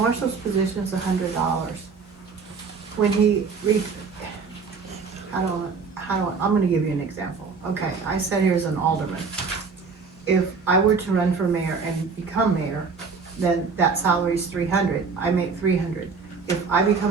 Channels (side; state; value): left; quieter; 5.0 dB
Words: position is $100. When I'm gonna give you an example. Okay, I sat here as an alderman. If I were to run for mayor and become mayor, then that salary is $300. I make $300. If I